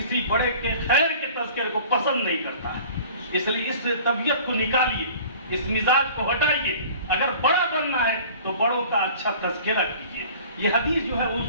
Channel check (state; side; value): inverted; both; correlation -0.45